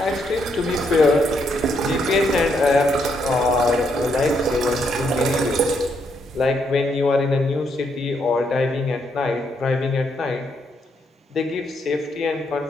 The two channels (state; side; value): normal; both; correlation 0.76